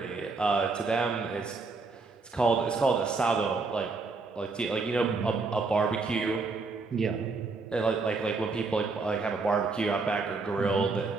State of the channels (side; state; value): left; quieter; 4.1 dB